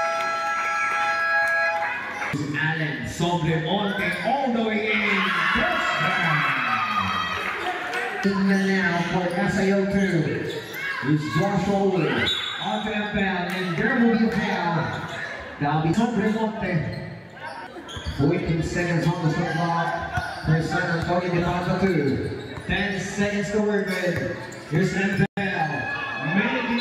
Allen Sobremonte all the way in. Touchdown. Even now for SAO2. It's Josh Owen. Onto Empel, and there will be a foul. That'll be Remonte. 14 seconds on the shot clock for San Antonio de Papa 2. 10 seconds to work with. Here's Empel. Making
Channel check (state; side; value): identical; both; correlation 1.00